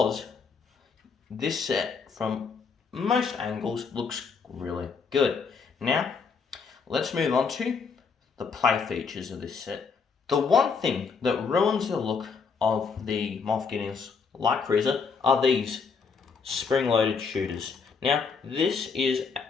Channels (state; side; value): quieter; right; 5.4 dB